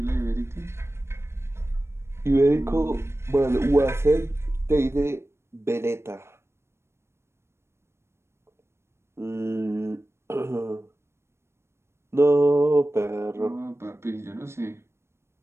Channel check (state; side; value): late; left; 0.13 ms